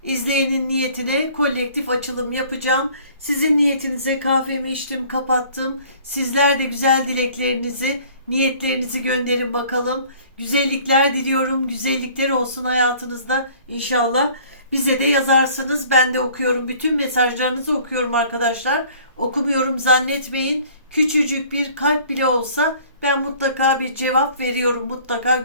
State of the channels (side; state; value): both; inverted; correlation -0.52